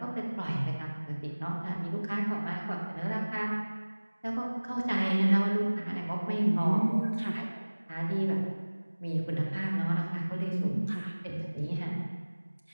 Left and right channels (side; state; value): both; inverted; correlation -1.00